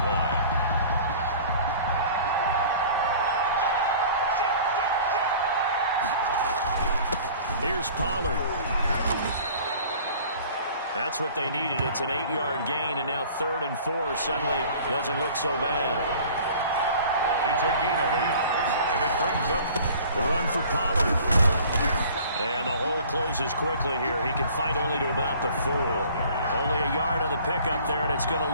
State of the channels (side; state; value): both; inverted; correlation -0.48